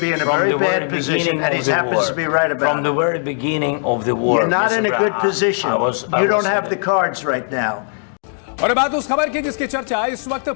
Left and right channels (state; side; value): silent; right; 64 dB below the other